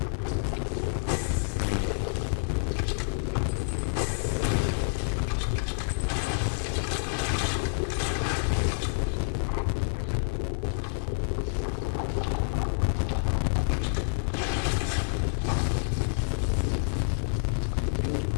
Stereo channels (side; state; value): right; silent; 59 dB below the other